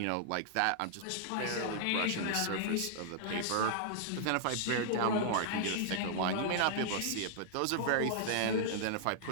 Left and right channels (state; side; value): different; both; correlation -0.01